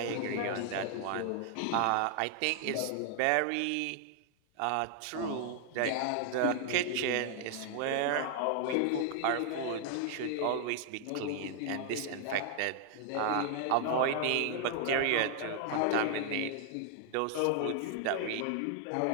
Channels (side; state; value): both; different; correlation 0.00